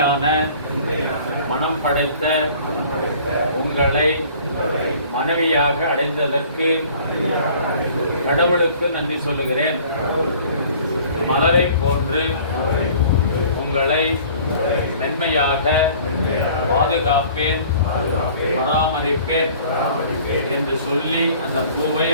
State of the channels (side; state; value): both; inverted; correlation -0.51